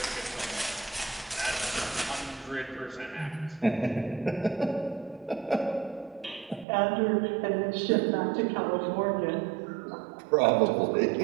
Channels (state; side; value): drops out; left; at 6.7 s